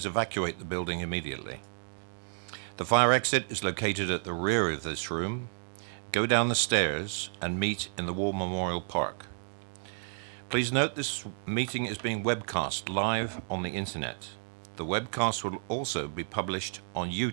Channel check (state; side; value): silent; left; digital silence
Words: evacuate the building immediately. The fire exit is located at the rear of this room. Go down the stairs and meet in the War Memorial Park. Please note this meeting is being webcast live on the internet. The webcast will also be published on